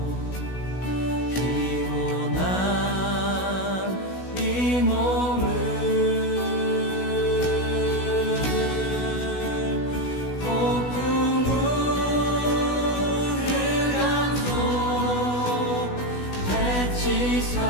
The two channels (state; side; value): late; right; 16 ms